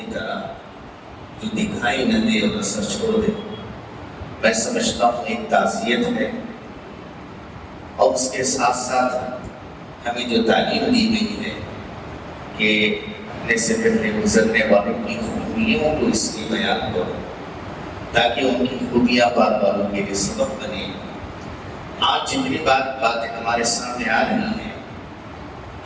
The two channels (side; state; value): both; identical; correlation 1.00